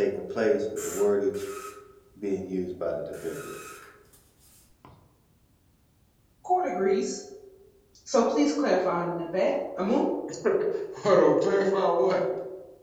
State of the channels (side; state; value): both; identical; correlation 1.00